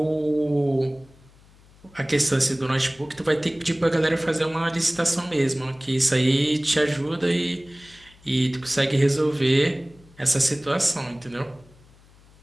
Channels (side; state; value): left; noise; hum, 27 dB below the sound